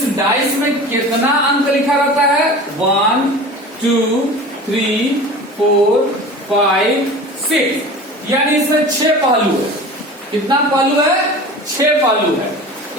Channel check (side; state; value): both; normal; correlation 0.36